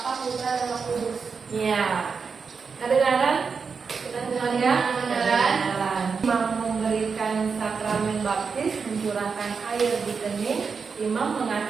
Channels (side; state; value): left; quieter; 5.4 dB